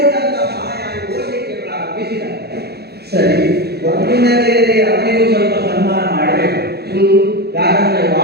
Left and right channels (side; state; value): left; late; 0.47 ms